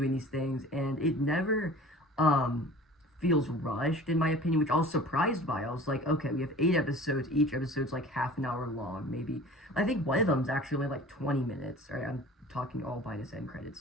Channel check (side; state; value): both; normal; correlation 0.43